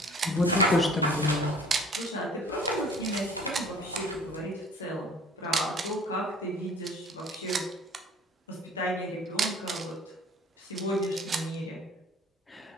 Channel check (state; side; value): normal; both; correlation 0.49